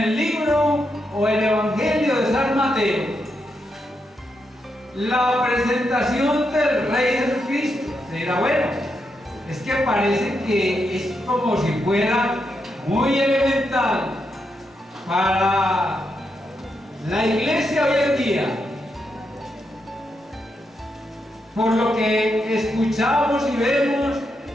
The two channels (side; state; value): both; normal; correlation 0.83